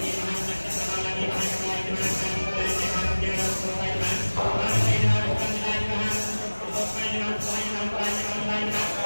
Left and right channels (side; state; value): both; inverted; correlation -1.00